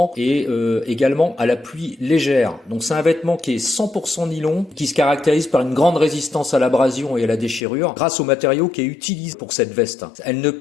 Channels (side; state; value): right; drops out; at 7.6 s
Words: et également à la pluie légère. Donc c'est un vêtement qui est 100% nylon qui se caractérise par une grande résistance à l'abrasion et à la déchirure grâce au matériau qui est utilisé pour cette veste. Elle ne